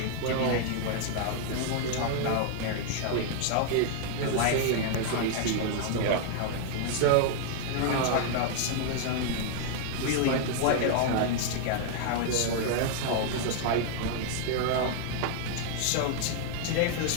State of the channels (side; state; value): both; different; correlation 0.00